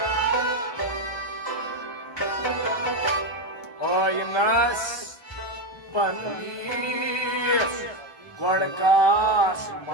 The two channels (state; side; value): late; right; 1.2 ms